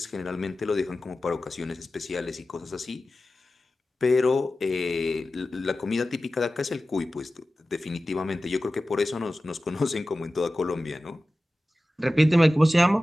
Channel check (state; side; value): normal; both; correlation 0.95